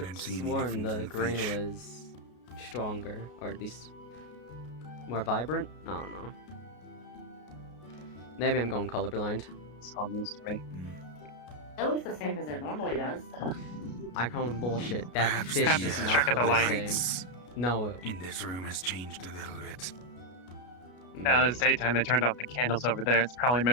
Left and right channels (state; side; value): late; right; 33 ms